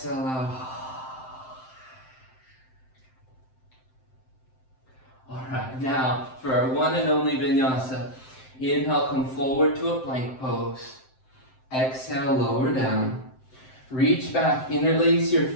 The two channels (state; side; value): late; right; 7.7 ms